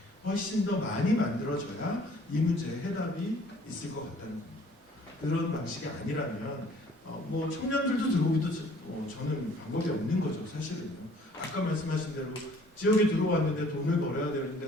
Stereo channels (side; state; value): both; normal; correlation 0.56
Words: 훨씬 더 많이 만들어져야 이 문제의 해답이 있을 것 같다는 겁니다. 그런 방식이 아니라면 뭐 청년들도 들어오기도 저는 방법이 없는 거죠. 사실은요. 아까 말씀하신 대로 지역에 들어왔는데 돈을 벌어야